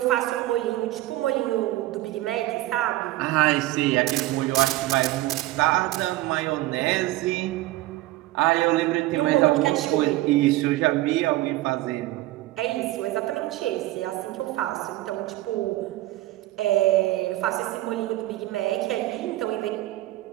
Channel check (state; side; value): quieter; left; 17.1 dB